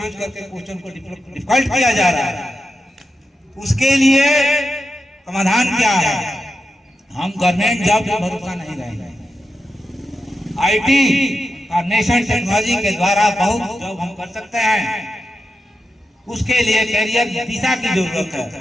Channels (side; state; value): both; normal; correlation 0.87